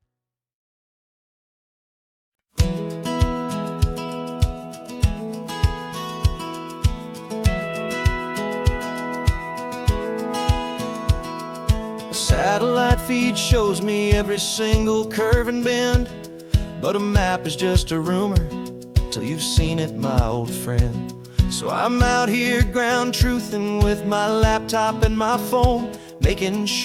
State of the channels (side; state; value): both; identical; correlation 1.00